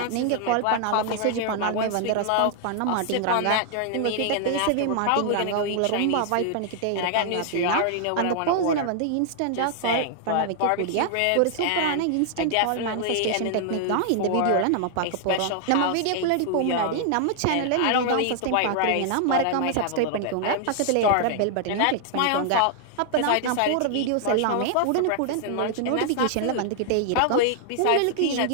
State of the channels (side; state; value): both; different; correlation 0.00